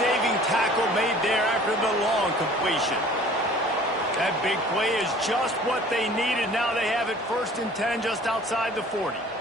tackle made there after the long completion. That big play is just what they needed. Now they have it 1st and 10 just outside the 40.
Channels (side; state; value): both; normal; correlation 0.49